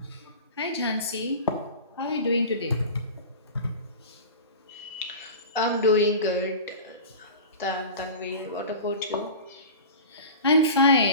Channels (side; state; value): both; inverted; correlation -0.34